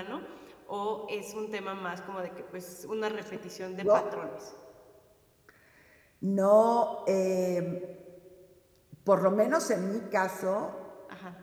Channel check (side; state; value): both; identical; correlation 1.00